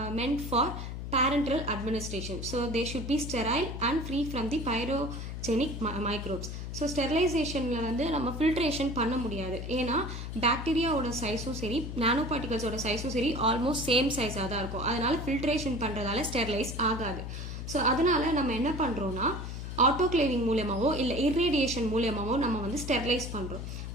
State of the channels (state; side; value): noise; left; hum, 6 dB below the sound